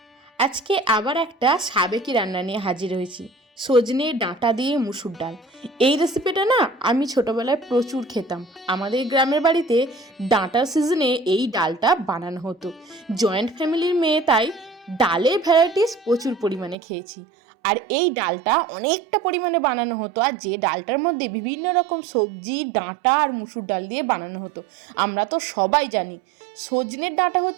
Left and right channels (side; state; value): left; drops out; at 16.8 s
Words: আজকে আবার একটা সাবেকি রান্না নিয়ে হাজির হয়েছি, সজনে ডাঁটা দিয়ে মুসুর ডাল। এই রেসিপিটা না আমি ছোটোবেলায় প্রচুর খেতাম। আমাদের গ্রামের বাড়িতে ডাঁটার সিজনে এই ডালটা বানানো হতো। জয়েন্ট ফ্যামিলির মেয়ে, তাই ডালের ভ্যারাইটিস প্রচুর পরিমাণে খেয়েছি। আর এই ডালটা অনেকটা পরিমাণে বানানো হতো, আর যে ডালটার মধ্যে বিভিন্ন রকম সবজি, ডাঁটা আর মুসুর ডাল দিয়ে বানানো হতো। আমরা তো সবাই জানি সজনের ডাঁটা